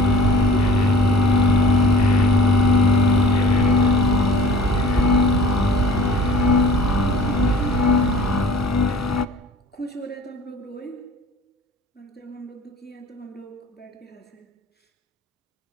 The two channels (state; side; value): normal; both; correlation 0.46